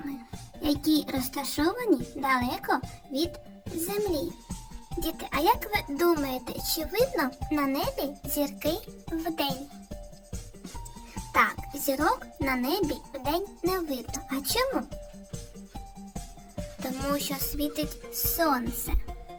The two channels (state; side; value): identical; both; correlation 1.00